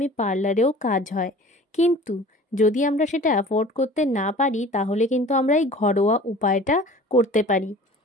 পার্লারেও কাজ হয়, কিন্তু যদি আমরা সেটা অ্যাফোর্ড করতে না পারি তাহলে কিন্তু আমরা এই ঘরোয়া উপায়টা করতে পারি।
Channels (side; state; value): both; normal; correlation 0.44